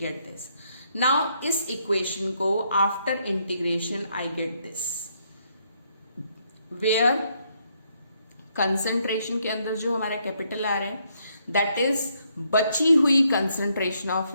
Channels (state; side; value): inverted; both; correlation -0.74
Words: this. Now इस equation को after integration I get this, where concentration के अंदर जो हमारा capital आ रहा है, that is बची हुई concentration of